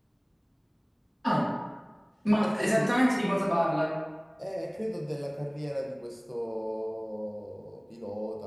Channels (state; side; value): identical; both; correlation 1.00